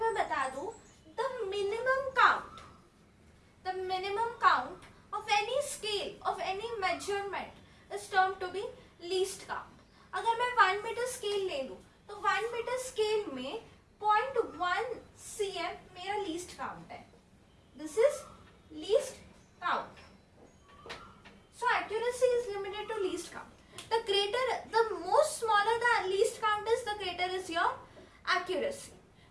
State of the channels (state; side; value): identical; both; correlation 1.00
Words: बता दूं, the minimum count of any scale of any measurement is termed to be least count. अगर मैं 1 मीटर स्केल ले लूं तो 1 मीटर स्केल में 0.1 cm मेरा लीस्ट काउंट है. This is least count. So accuracy is limited to least count. The most smaller the least count is, the greater is your accuracy.